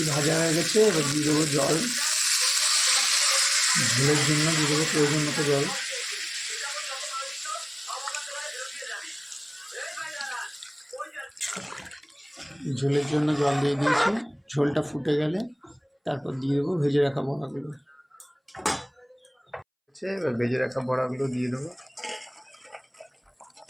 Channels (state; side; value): identical; both; correlation 1.00